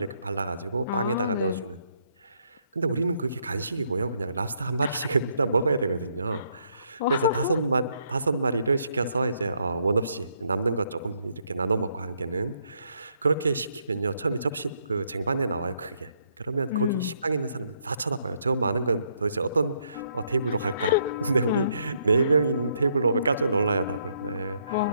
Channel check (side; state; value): both; inverted; correlation -0.72